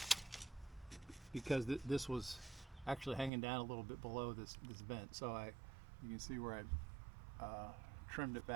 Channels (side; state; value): left; drops out; at 3.3 s